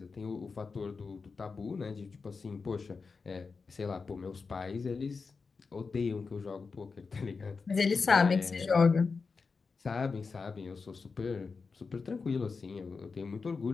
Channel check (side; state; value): right; quieter; 4.7 dB